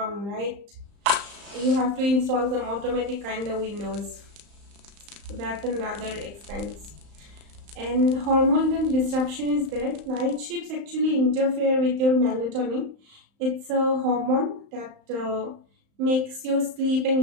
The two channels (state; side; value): late; left; 35 ms